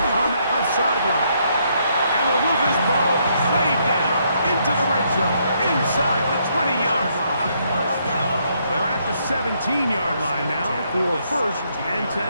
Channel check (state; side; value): inverted; both; correlation -0.73